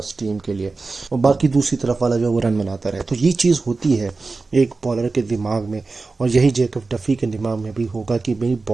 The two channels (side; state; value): left; quieter; 3.8 dB